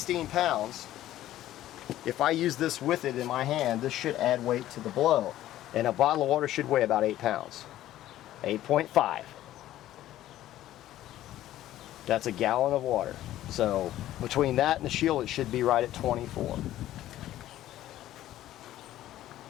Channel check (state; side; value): quieter; right; 13.7 dB